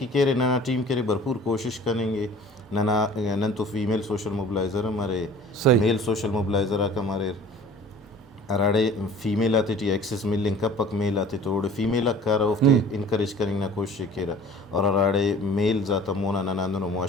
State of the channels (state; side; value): normal; both; correlation 0.46